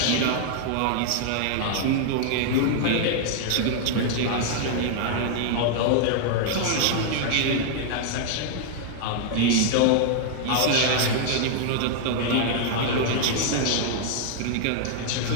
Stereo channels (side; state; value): both; different; correlation 0.00